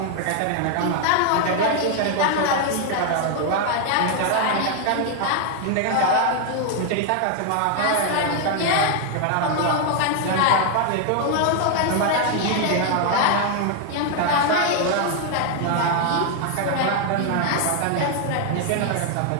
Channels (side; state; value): both; different; correlation 0.00